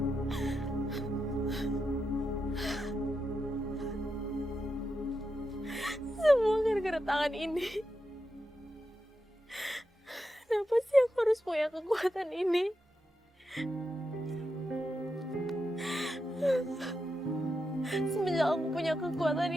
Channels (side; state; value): both; normal; correlation 0.87